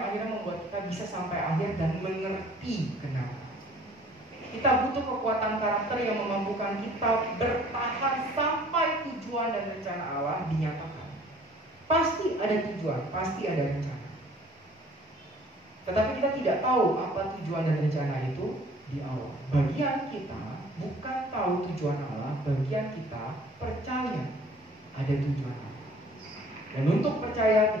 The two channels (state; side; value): normal; both; correlation 0.53